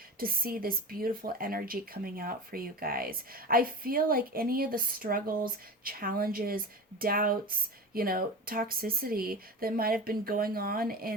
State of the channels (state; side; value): normal; both; correlation 0.30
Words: to see this beautiful energy coming out for you guys. I feel like any of the struggles, challenges, doubts, toxicity that might have been going on